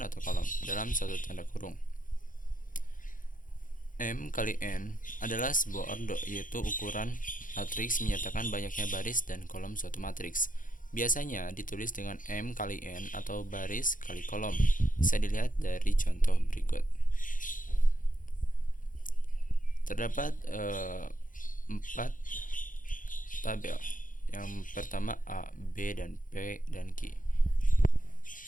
atau kolom dalam satu tanda kurung. M kali N adalah sebuah ordo, yaitu ukuran matriks menyatakan banyaknya baris dan kolom suatu matriks. Biasanya ditulis dengan M kali N atau baris kali kolom. Bisa dilihat dari contoh berikut. Terdapat 4 tabel. Yang pertama A, B, dan P, dan Q.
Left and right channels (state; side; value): late; right; 0.39 ms